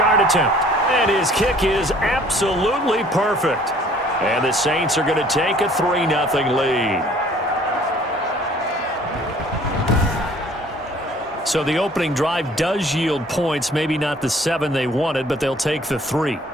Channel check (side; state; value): both; normal; correlation 0.55